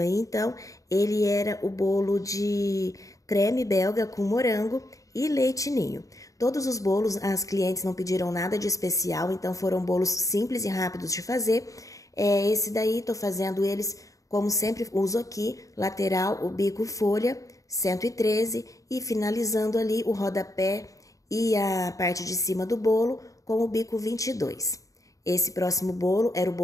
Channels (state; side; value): late; right; 0.16 ms